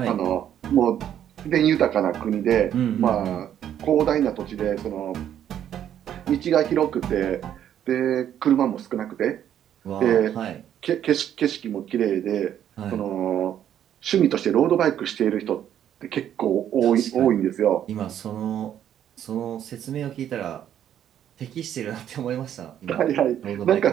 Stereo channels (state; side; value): quieter; left; 10.3 dB